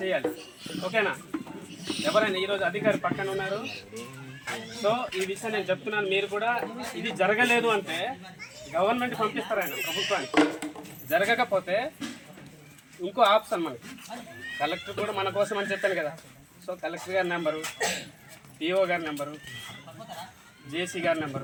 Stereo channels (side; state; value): both; identical; correlation 1.00